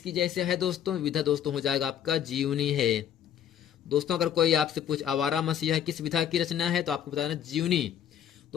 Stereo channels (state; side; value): quieter; right; 9.7 dB